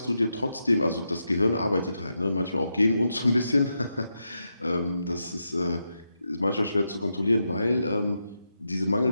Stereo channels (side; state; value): both; inverted; correlation -0.85